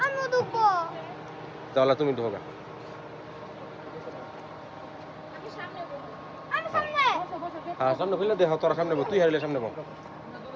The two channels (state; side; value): identical; both; correlation 1.00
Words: আমি ঢুকবো। তাহলে তুমি ঢোকা। আমি সামনে। হ্যাঁ সামনে খুলে দেখো, তোরা সামনে বল, তুই হারিলে সামনে বল।